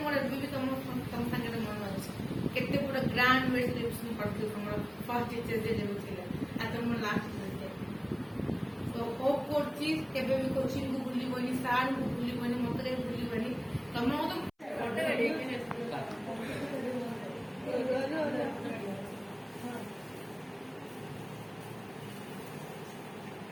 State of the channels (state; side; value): identical; both; correlation 1.00